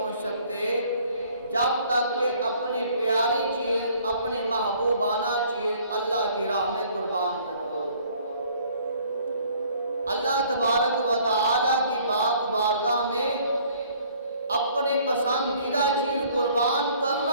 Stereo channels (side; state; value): both; inverted; correlation -0.58